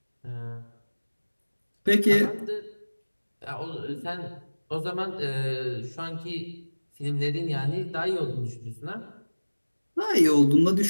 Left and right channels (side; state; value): both; inverted; correlation -1.00